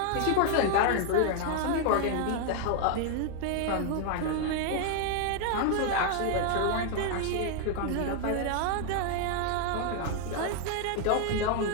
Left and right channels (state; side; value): different; both; correlation 0.00